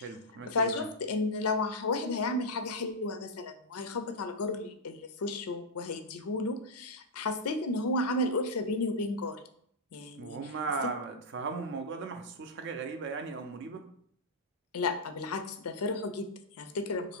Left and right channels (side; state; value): both; normal; correlation -0.07